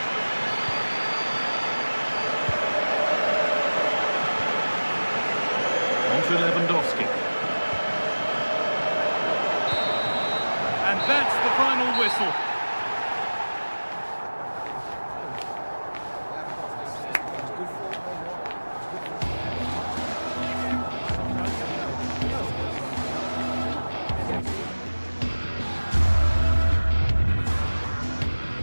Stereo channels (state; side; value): inverted; both; correlation -1.00